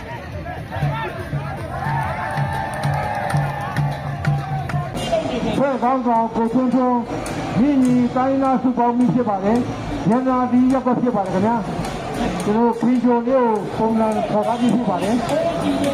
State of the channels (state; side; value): identical; both; correlation 1.00